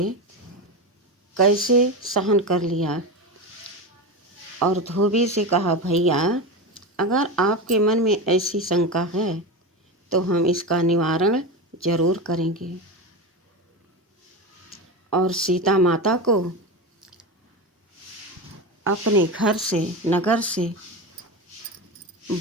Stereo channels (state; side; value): normal; both; correlation 0.21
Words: कैसे सहन कर लिया और धोबी से कहा, भैया अगर आपके मन में ऐसी शंका है तो हम इसका निवारण जरूर करेंगे और सीता माता को अपने घर से नगर से